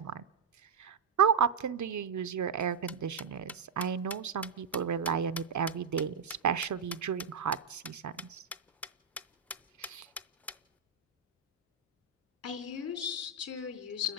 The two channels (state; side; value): quieter; left; 5.5 dB